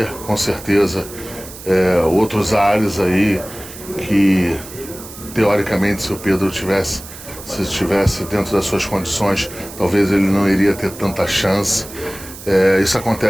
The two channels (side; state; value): right; noise; hiss, 15 dB below the sound